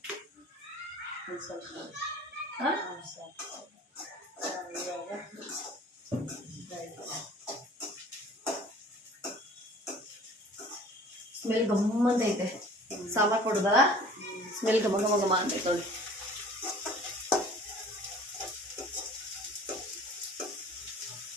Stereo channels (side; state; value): both; normal; correlation 0.48